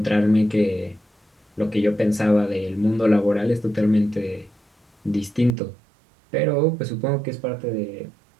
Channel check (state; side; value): drops out; left; at 5.6 s